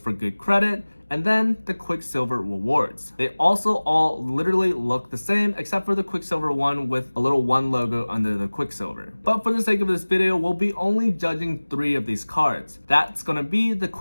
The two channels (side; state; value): both; inverted; correlation -1.00